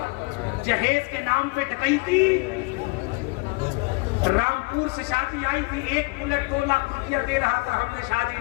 جہیز کے نام پہ ڈکیتی. رامپور سے شادی آئی تھی, 1 بلٹ 2 لاکھ روپیہ دے رہا تھا, ہم نے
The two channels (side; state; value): right; quieter; 27.6 dB